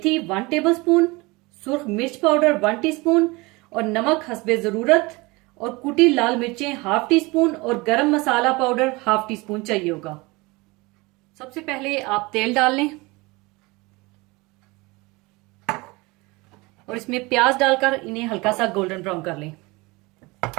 1 टेबल स्पून, सुर्ख मिर्च पाउडर 1 टीस्पून और नमक हस्बे जरूरत, और कुटी लाल मिर्चें हाफ टी स्पून और गरम मसाला पाउडर हाफ टी स्पून चाहिए होगा। सबसे पहले आप तेल डाल लें और इसमें प्याज डालकर इन्हें हल्का सा गोल्डन ब्राउन कर लें।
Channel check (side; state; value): left; quieter; 24.1 dB